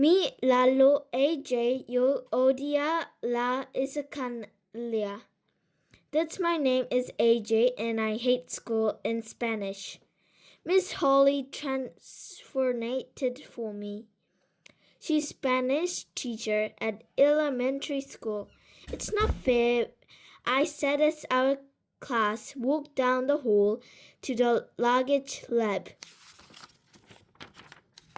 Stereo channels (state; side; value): identical; both; correlation 1.00